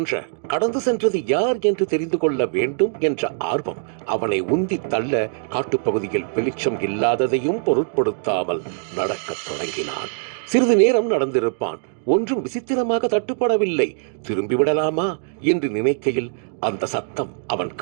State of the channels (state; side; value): silent; left; digital silence